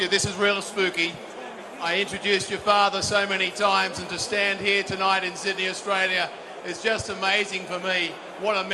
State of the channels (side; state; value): both; identical; correlation 1.00